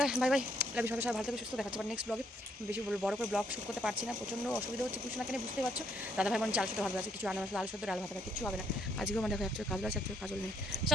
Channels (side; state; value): both; normal; correlation 0.71